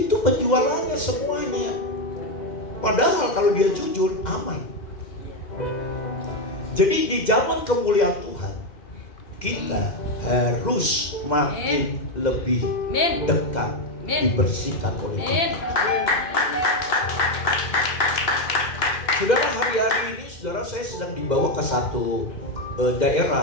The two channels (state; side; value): late; right; 2.1 ms